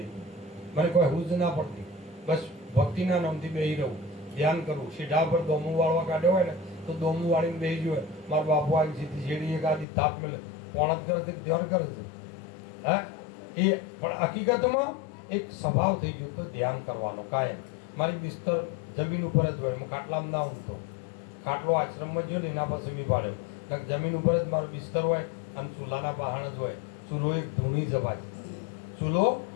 હતી. મને કોઈ હુજ ના પડતી. બસ ભક્તિના નામથી બેસી રહું, ધ્યાન કરવું. સીધા પર દોમું વાળવા કાઢ્યો હોય ને તો દોમું વાળીને બેસી જોઈએ. મારા બાપુ આવી સીધી શેડી એક આધી થાપ મેલે પોણત કરે છે, ધ્યાન કરે છે. હા, એ પણ હકીકતમાં એક સ્વભાવ થઈ ગયો તો ધ્યાન કરવાનો કાયમ. મારી બિસ્તર જમીન ઉપર જ હોય, હું ખાટલામાં ના ઊંઘતો. ખાટલો આશ્રમમાં ગયો ને એના પાસે મેં પાડ્યો, જમીન ઉપર જ મારો બિસ્તર હોય અને ચૂલાના પહાણ જ હોય. ચૂલો એક ધૂણી જ ભાઈ, ચૂલો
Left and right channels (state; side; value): drops out; right; at 9.9 s